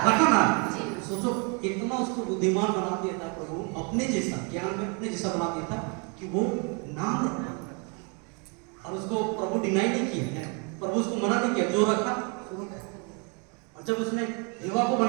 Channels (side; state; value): left; quieter; 34.9 dB